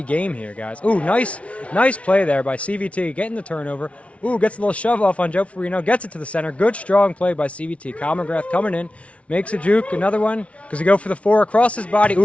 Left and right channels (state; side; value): late; right; 0.063 ms